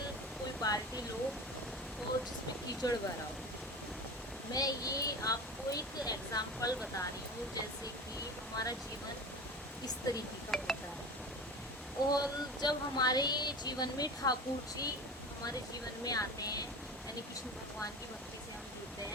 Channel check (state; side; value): normal; both; correlation 0.31